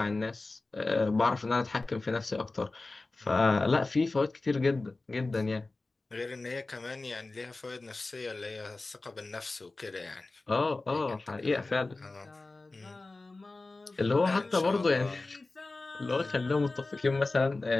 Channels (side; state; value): right; quieter; 3.3 dB